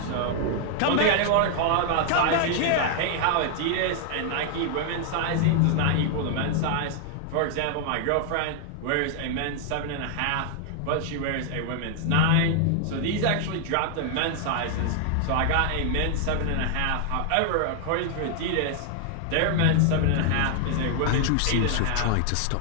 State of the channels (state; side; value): different; both; correlation 0.00